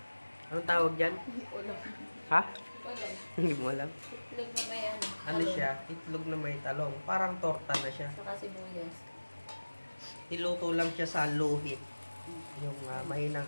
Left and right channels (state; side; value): inverted; both; correlation -1.00